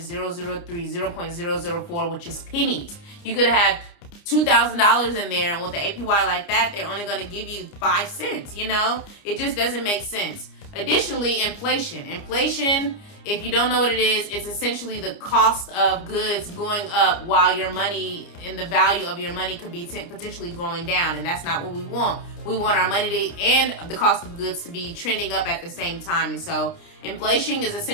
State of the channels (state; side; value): late; right; 29 ms